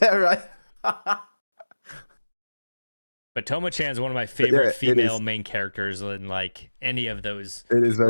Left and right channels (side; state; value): both; inverted; correlation -1.00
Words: right. But Tomo-chan is one of my Yeah, favorite it female is. main characters in like any of those It is